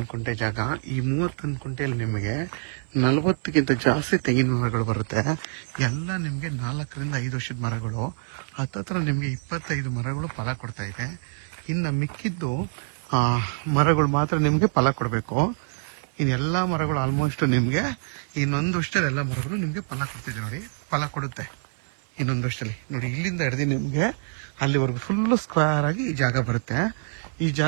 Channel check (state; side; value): silent; left; 60 dB below the other